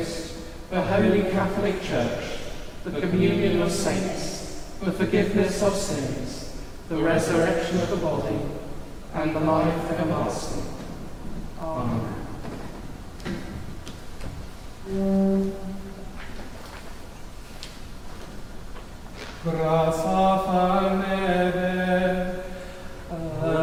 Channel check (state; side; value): identical; both; correlation 1.00